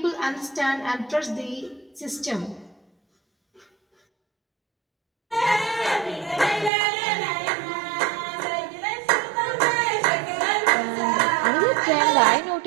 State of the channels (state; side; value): drops out; left; at 6.7 s